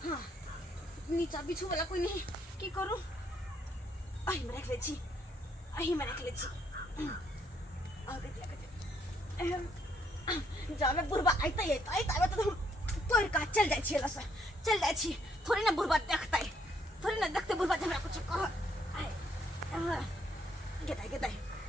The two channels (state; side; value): normal; both; correlation 0.71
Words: हाँ नीचा बिछू वाला कोई नहीं की करूं अही में रख ले छी अही में रख ले छी और जाबे बुढ़वा आइते तो हम तोड़ का चल जाय छी लस चल जाय छी थोड़ी ना बुढ़वा देखतै थोड़ी ना देखते बुढ़वा हमरा कुछ कह गेदाई